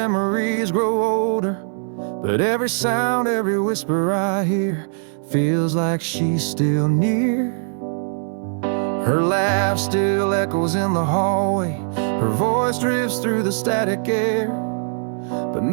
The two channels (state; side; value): silent; left; 65 dB below the other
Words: grow older. But every sound, every whisper I hear feels like she's still near. Her laugh still echoes in the hallway. Her voice drifts through the static air. But